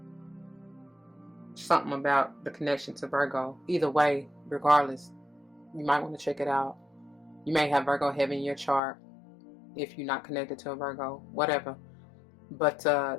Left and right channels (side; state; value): right; drops out; at 8.8 s